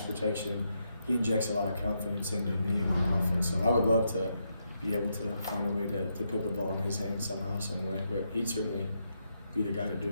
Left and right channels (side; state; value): both; inverted; correlation -0.81